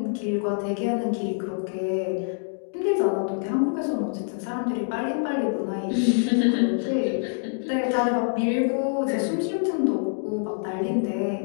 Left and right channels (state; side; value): silent; right; digital silence